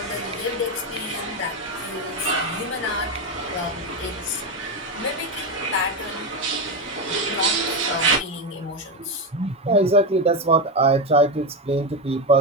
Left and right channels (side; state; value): both; normal; correlation 0.12